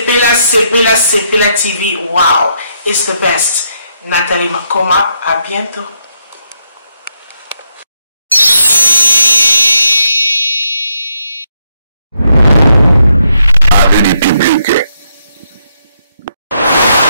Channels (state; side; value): inverted; both; correlation -0.77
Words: TV. Wow. It's the best. Nathalie Makoma. À bientôt.